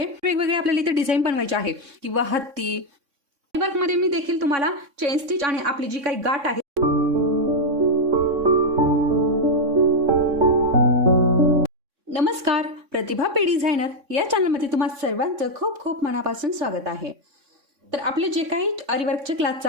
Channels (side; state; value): left; late; 3.6 ms